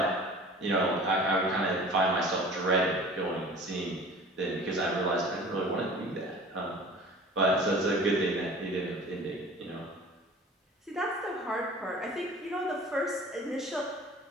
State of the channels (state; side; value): normal; both; correlation 0.43